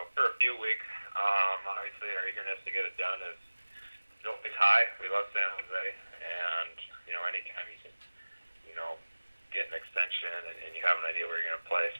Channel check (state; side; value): inverted; both; correlation -1.00